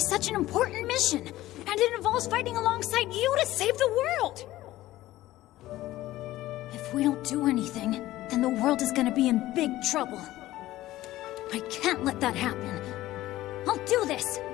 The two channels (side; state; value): right; quieter; 15.8 dB